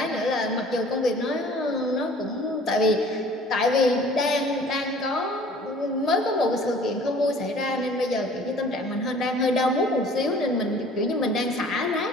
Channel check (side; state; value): both; normal; correlation 0.50